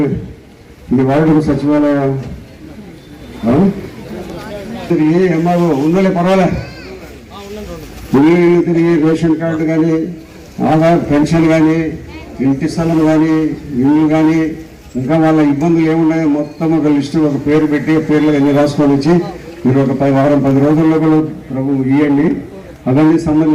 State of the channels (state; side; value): identical; both; correlation 1.00